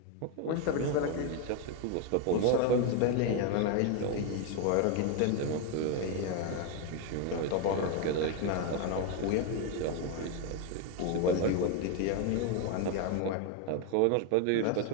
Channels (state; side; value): different; both; correlation 0.01